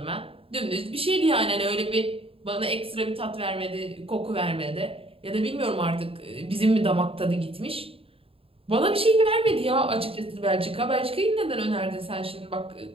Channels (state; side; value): late; left; 0.27 ms